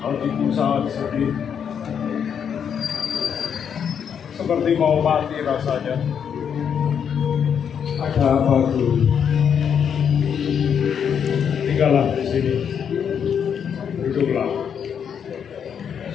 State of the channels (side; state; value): right; quieter; 7.7 dB